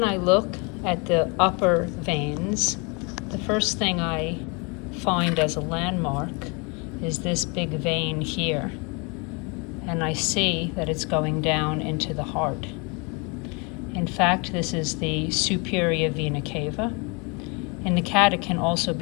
I look at the upper veins, the first thing I find as a landmark is this big vein here, and I see that it's going down into the heart. In fact, this is the superior vena cava. In the cat, it can also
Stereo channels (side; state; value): right; quieter; 31.4 dB